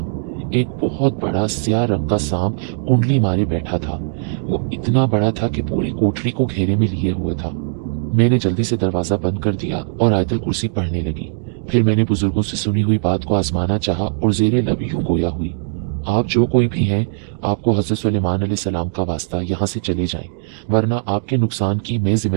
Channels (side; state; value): left; silent; digital silence